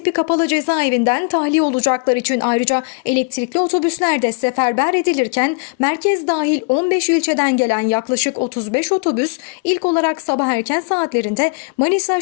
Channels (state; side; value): quieter; right; 33.7 dB